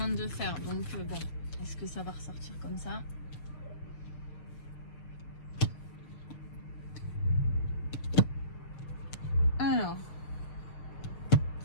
de faire. Donc, bon, est-ce que ça va ressortir comme ça? Alors,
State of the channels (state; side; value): late; right; 6.6 ms